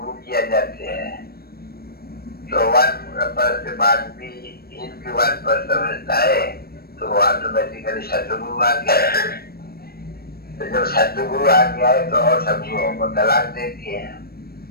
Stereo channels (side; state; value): right; late; 0.44 ms